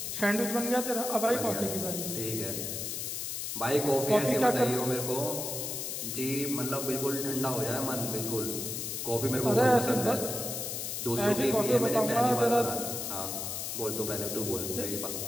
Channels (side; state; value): left; noise; hiss, 4 dB below the sound